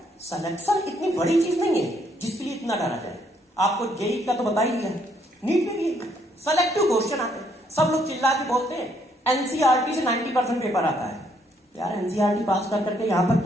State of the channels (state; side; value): normal; both; correlation 0.70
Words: सिलेक्शन इतनी बड़ी चीज नहीं है जिसके लिए इतना डरा जाए। आपको जेई का तो बता ही दिया, नीट में भी सेलेक्टिव क्वेश्चन आते हैं। सब लोग चिल्ला के बोलते हैं एनसीईआरटी से 90% पेपर आता है। यार एनसीईआरटी पास कर करके यहां तक